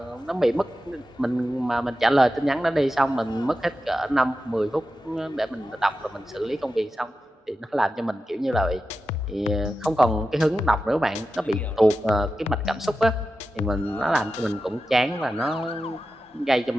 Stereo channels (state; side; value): normal; both; correlation 0.92